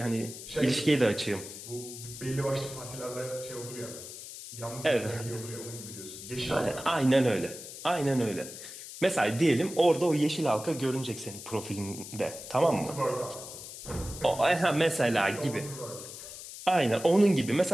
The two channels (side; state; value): left; noise; hiss, 12 dB below the sound